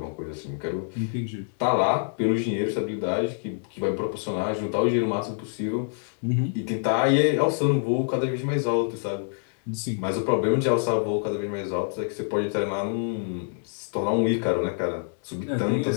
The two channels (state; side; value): silent; right; 61 dB below the other